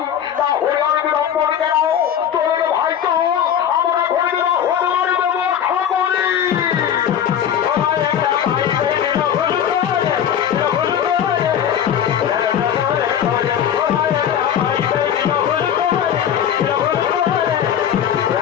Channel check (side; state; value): right; quieter; 9.3 dB